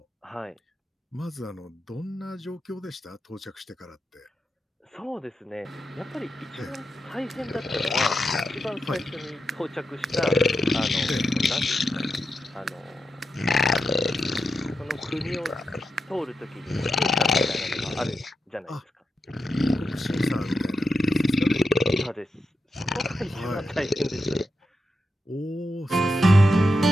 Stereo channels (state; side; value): normal; both; correlation 0.87